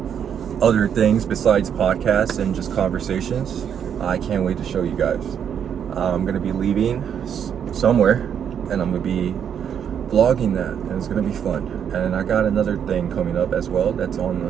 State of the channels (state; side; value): quieter; left; 8.4 dB